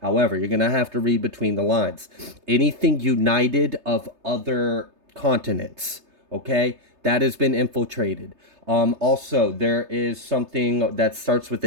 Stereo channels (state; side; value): late; left; 3.3 ms